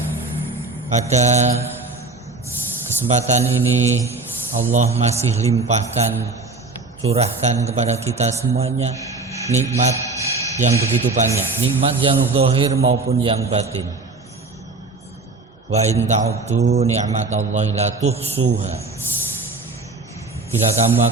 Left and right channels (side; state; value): left; quieter; 3.6 dB